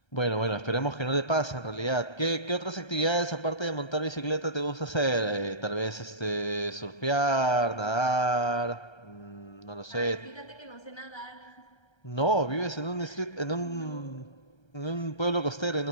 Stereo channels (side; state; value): right; late; 1.3 ms